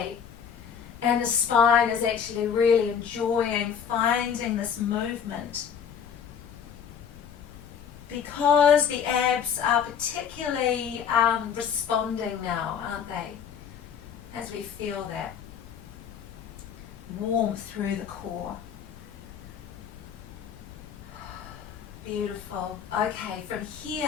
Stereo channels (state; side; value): quieter; right; 7.7 dB